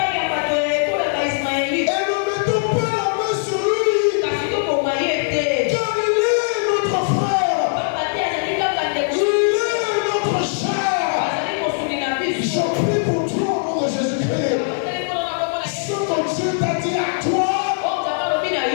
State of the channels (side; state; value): right; silent; digital silence